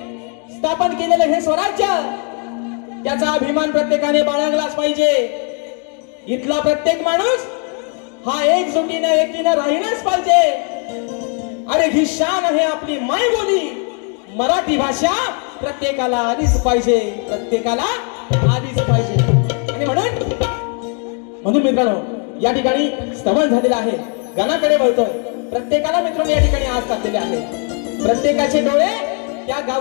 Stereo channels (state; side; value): quieter; right; 39.9 dB